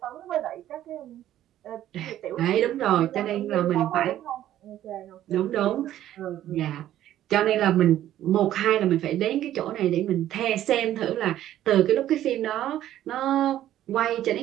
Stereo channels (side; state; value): left; quieter; 12.5 dB